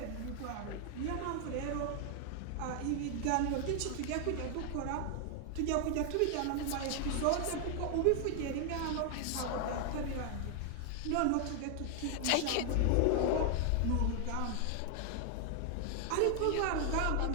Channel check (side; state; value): both; different; correlation 0.00